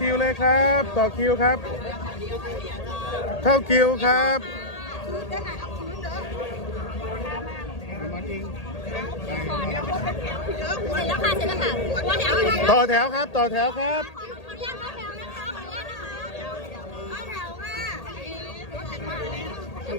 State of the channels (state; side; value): late; right; 1.8 ms